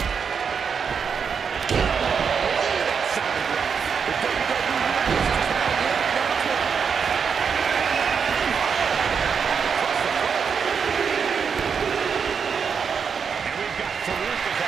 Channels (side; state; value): left; quieter; 6.3 dB